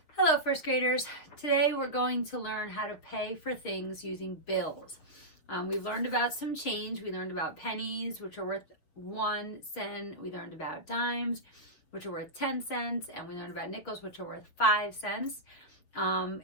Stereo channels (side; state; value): right; late; 6.7 ms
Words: Hello, first graders. Today we're going to learn how to pay for things using bills. We've learned about some change. We learned about pennies, which are worth 1 cent. We learned about dimes, which are worth 10 cents. And we learned about nickels, which are worth 5 cents.